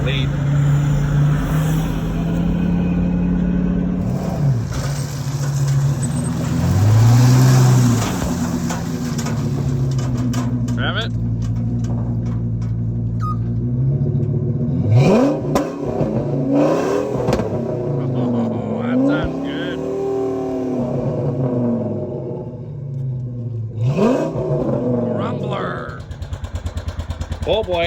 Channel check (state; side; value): identical; both; correlation 1.00